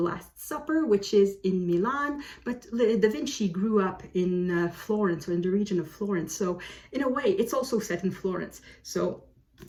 Last Supper, which is in Milan, but da Vinci grew up in Florence, or in the region of Florence. So in a way, it's also set in Florence. So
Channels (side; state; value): both; identical; correlation 1.00